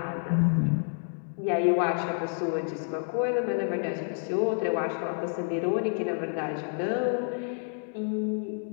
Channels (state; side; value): silent; right; 59 dB below the other